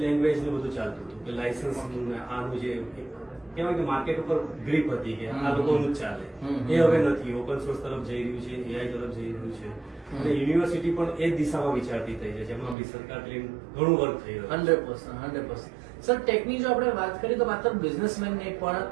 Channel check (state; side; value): drops out; left; at 12.8 s